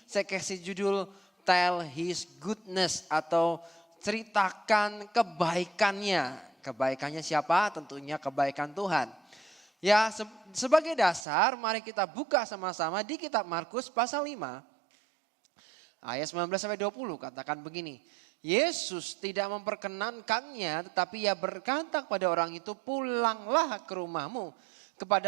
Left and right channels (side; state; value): left; drops out; at 11.2 s